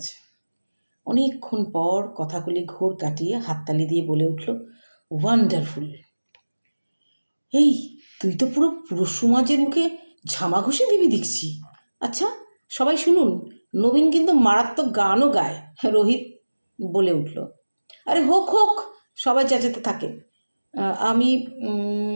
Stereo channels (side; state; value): both; inverted; correlation -1.00